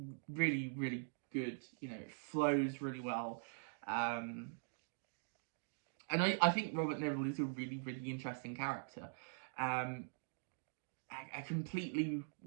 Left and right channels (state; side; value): silent; left; digital silence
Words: really, really good. You know, it flows really well, and I think Robert Neville is a really, really interesting character. A completely